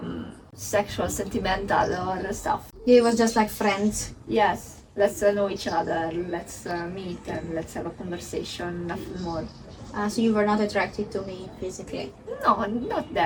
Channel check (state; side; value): identical; both; correlation 1.00